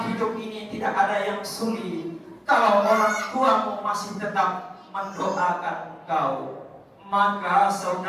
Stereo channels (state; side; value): identical; both; correlation 1.00